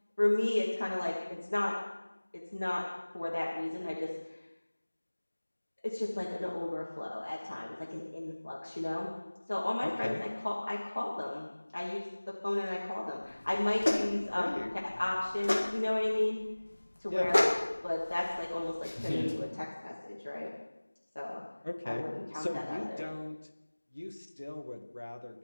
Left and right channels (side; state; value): both; inverted; correlation -1.00